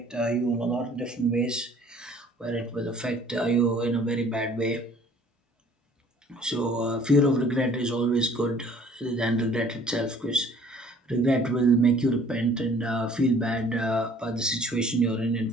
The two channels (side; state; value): both; normal; correlation 0.54